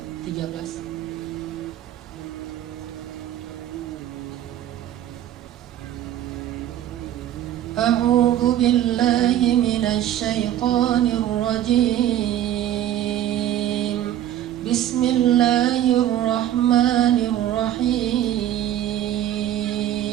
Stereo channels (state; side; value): quieter; left; 11.7 dB